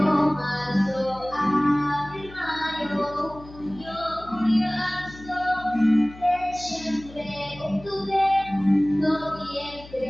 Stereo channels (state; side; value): noise; left; hum, 18 dB below the sound